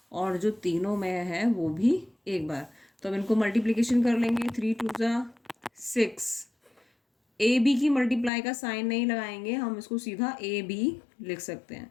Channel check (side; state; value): right; drops out; at 8.3 s